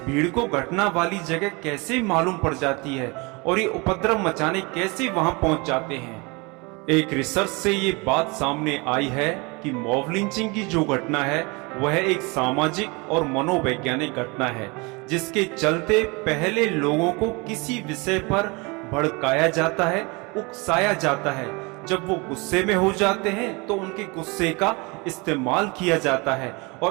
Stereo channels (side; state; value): left; quieter; 27.6 dB